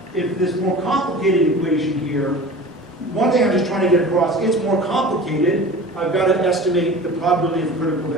if this more complicated equation here. One thing I'm just trying to get across, it's more complicated. I've got to estimate the probability of a critical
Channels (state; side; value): normal; both; correlation 0.38